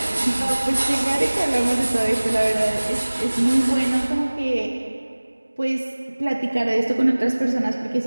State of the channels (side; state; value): both; inverted; correlation -1.00